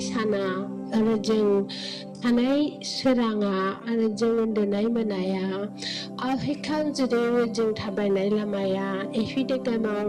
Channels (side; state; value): both; identical; correlation 1.00